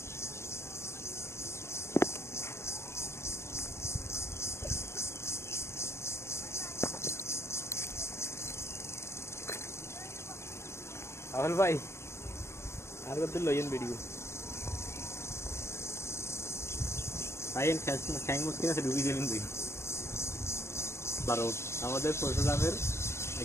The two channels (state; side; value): late; right; 0.13 ms